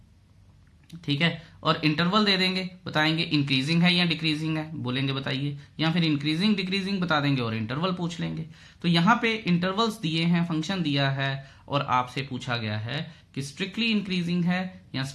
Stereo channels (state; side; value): identical; both; correlation 1.00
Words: ठीक है, और इंटरवल दे देंगे, बताएंगे इंक्रीजिंग है या डिक्रीजिंग है, बोलेंगे बताइए, या फिर इंक्रीजिंग डिक्रीजिंग बता देंगे और इंटरवल पूछ लेंगे। तो यहाँ पे इंटरवल्स दिए हैं, फंक्शन दिया है, और आपसे पूछा गया है कि स्ट्रिक्टली इंक्रीजिंग है या